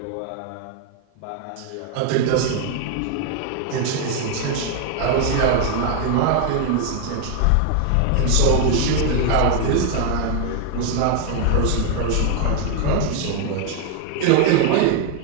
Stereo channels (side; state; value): both; different; correlation 0.00